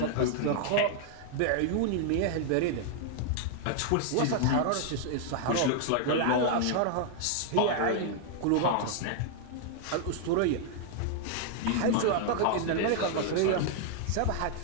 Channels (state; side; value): different; both; correlation 0.00